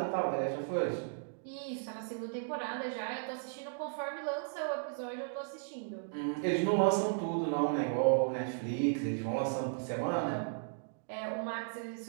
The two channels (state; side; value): silent; left; digital silence